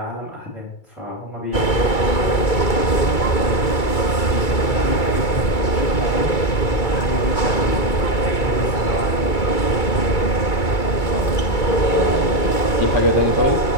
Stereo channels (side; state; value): right; late; 2.3 ms